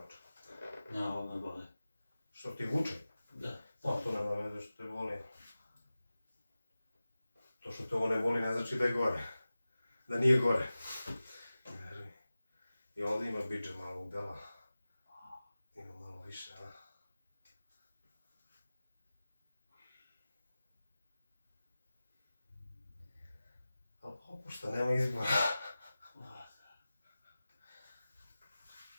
Ne, ovo me boli. Što ti vuče? Da. Pa to nema veze što te boli. To što te ovo ne boli ne znači da je gore. Da nije gore. I ovdje ima biđe malo udela. Ima malo više, a? Ali popušta, nema izbora.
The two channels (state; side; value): inverted; both; correlation -0.96